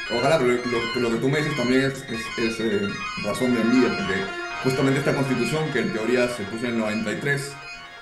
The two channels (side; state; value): both; identical; correlation 1.00